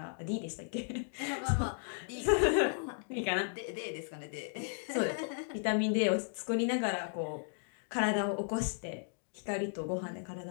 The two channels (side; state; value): right; silent; digital silence